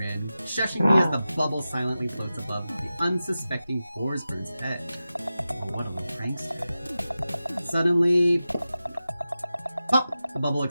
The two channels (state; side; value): inverted; both; correlation -0.93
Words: shushing me as the bubble silently floats above the unsuspecting Forsburn's head. Oh, what a little prankster. Suddenly, pop! The bubble